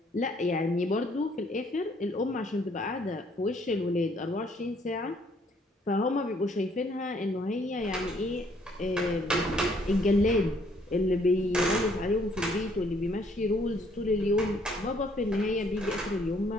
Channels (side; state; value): both; normal; correlation 0.65